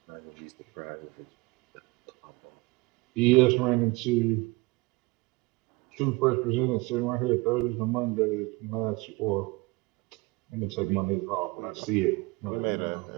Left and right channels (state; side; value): quieter; left; 23.0 dB